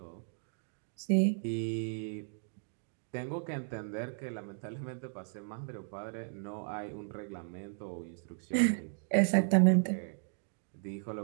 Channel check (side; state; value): left; silent; digital silence